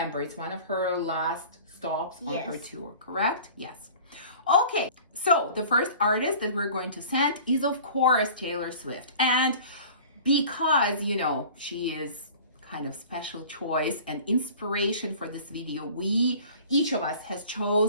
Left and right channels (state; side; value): inverted; both; correlation -0.44